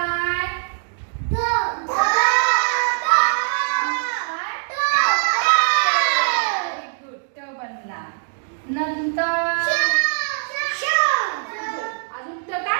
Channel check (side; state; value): left; silent; digital silence